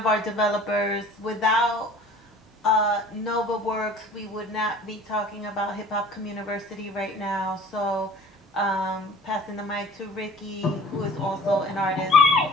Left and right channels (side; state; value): both; normal; correlation 0.47